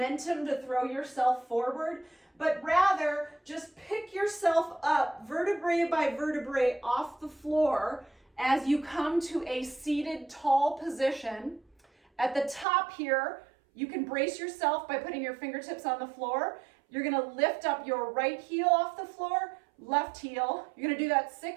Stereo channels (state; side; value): drops out; left; at 12.7 s